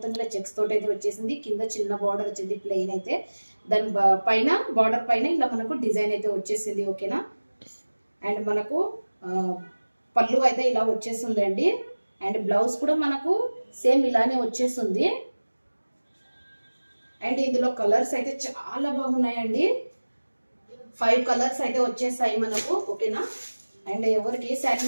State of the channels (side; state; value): both; inverted; correlation -1.00